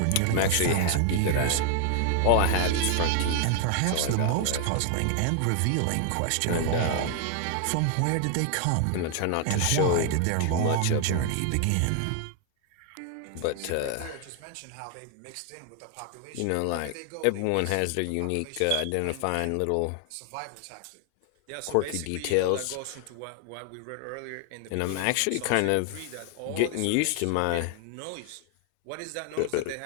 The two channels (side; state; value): both; different; correlation 0.00